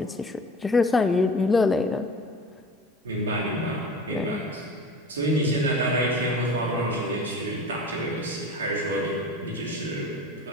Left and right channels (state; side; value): normal; both; correlation 0.38